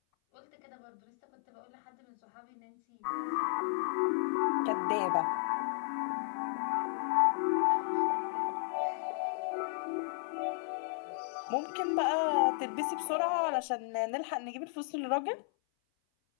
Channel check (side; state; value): right; silent; 55 dB below the other